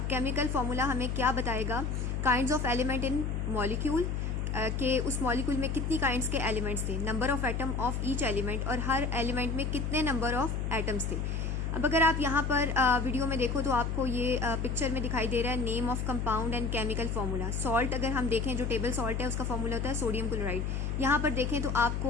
केमिकल फार्मूला हमें क्या बताएगा? Kinds of element in molecule के उस मॉलिक्यूल में कितनी काइंड्स के एलिमेंट्स थे, number of atom of each element और हर एलिमेंट में कितने नंबर ऑफ एटम्स थे. अब अगर आप यहाँ पर वीडियो में देखो तो आपको ये पिक्चर में दिखाई दे रहा है name of compound and chemical formula. Salt अगर हम देखें जो टेबल सॉल्ट है उसका फार्मूला होता है सोडियम क्लोराइड. यहाँ पर देखें तो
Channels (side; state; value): left; noise; hum, 1 dB below the sound